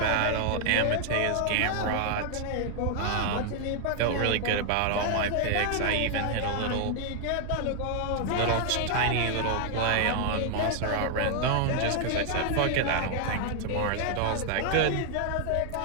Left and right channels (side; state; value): both; different; correlation 0.00